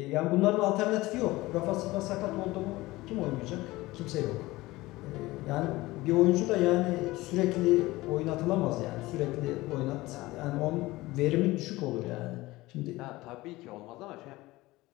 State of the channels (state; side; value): quieter; right; 19.4 dB